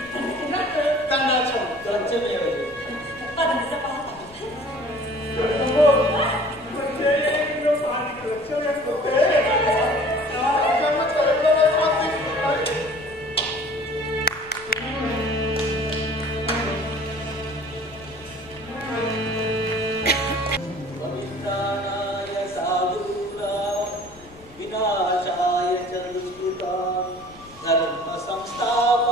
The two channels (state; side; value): noise; left; rumble, 23 dB below the sound